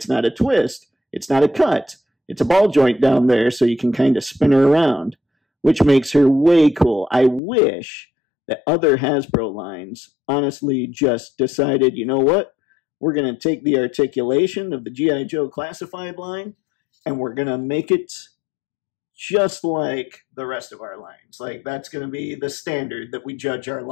not a twist, it's not a cut. It's a ball joint down there so you can kind of spin her around, which makes her way cool. I wish that other Hasbro lines honestly just decided, you know what? We're going to take the articulation of the G.I. Joe classified line and we're going to make it just like the rest of our lines. Like, that's going to be the standard that we judge our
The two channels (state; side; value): drops out; right; at 7.4 s